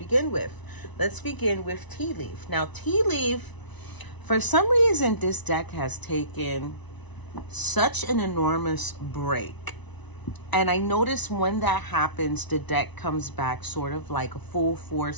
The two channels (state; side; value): late; right; 1.0 ms